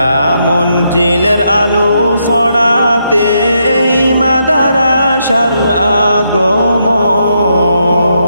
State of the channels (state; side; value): inverted; both; correlation -0.79